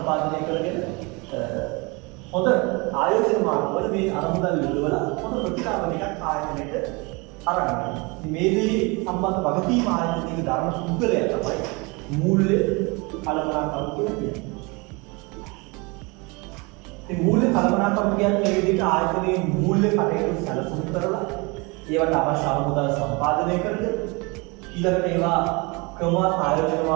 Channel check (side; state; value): left; quieter; 27.8 dB